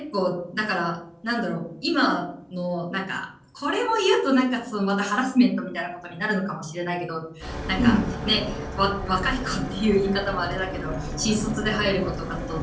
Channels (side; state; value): both; identical; correlation 1.00